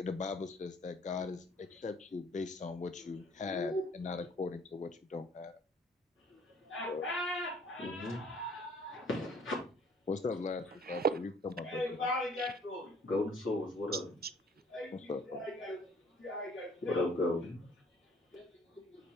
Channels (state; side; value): normal; both; correlation 0.57